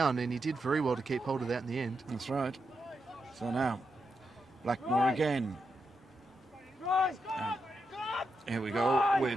and he did very well to keep hold of that in the end. That's right. So now, Blackmore again. And here we go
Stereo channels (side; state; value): both; normal; correlation 0.85